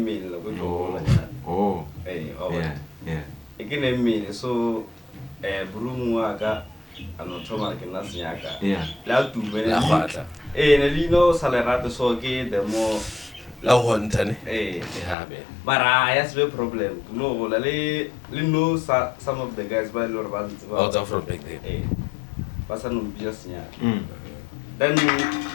mail Oh. Eh, Yeah. ikine mail so brumu aka anotoma kena sinyaga. Yeah. La tu bene. La khwatla. Nelino salerate so ke the more La hontane. yeah man. but I has a problem. No, le know some of the guys by Lord Bands Out of from back then. Person just then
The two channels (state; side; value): drops out; right; at 15.2 s